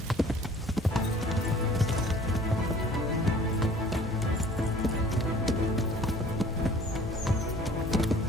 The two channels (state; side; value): normal; both; correlation 0.52